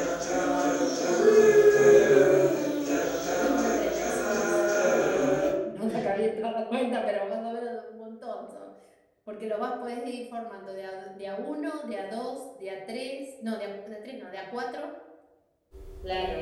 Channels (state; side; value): identical; both; correlation 1.00